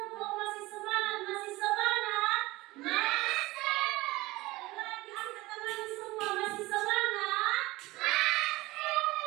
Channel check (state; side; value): quieter; left; 20.0 dB